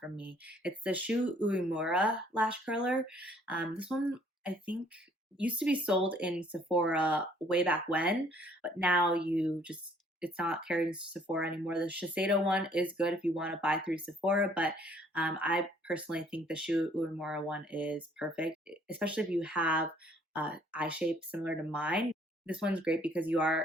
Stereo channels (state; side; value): normal; both; correlation 0.61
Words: me. It's the Shu Uemura lash curler. This one I think used to be sold in Sephora way back when, but now it's not carried in Sephora anymore. The Shiseido one is good if you want to buy through Sephora, but I personally think the Shu Uemura one is perfect, especially if you have eye shape similar to mine. This one's great because you